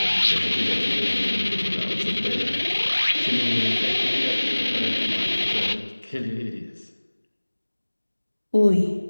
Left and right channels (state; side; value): inverted; both; correlation -1.00